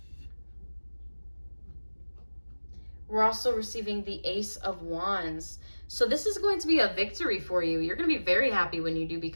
We're also receiving the Ace of Wands. So this is going to be a victory for you. You're going to be very happy when you do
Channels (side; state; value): both; inverted; correlation -1.00